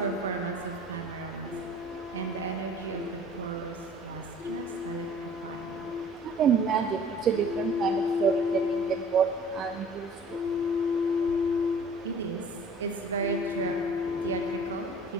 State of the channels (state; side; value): normal; both; correlation 0.49